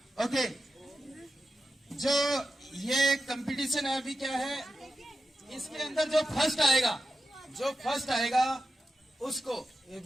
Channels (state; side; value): normal; both; correlation 0.90